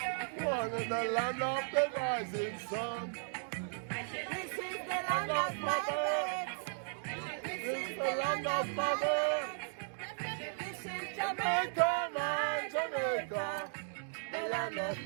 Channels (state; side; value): silent; left; digital silence